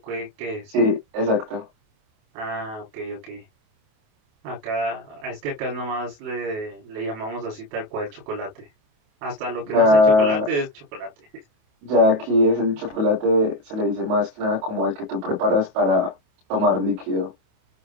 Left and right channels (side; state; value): left; late; 28 ms